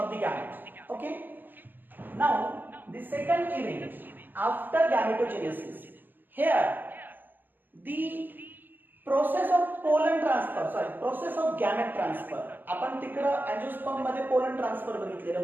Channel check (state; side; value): late; left; 0.091 ms